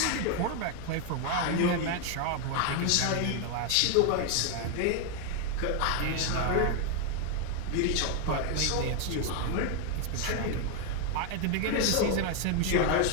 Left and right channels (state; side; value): different; both; correlation 0.00